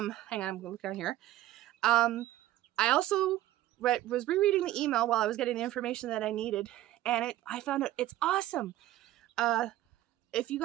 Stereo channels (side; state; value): left; quieter; 14.5 dB